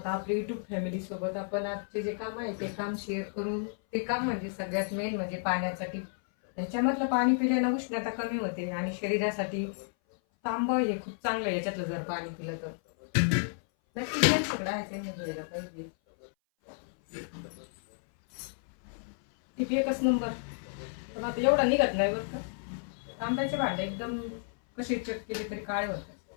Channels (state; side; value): silent; right; 57 dB below the other